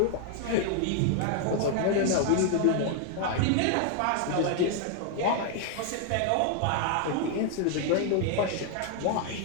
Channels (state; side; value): different; both; correlation 0.00